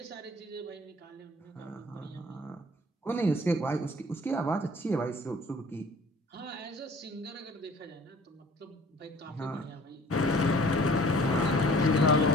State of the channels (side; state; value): both; normal; correlation 0.50